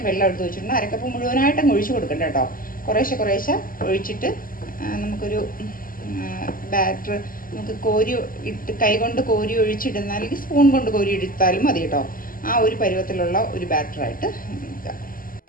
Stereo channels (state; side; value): late; right; 0.41 ms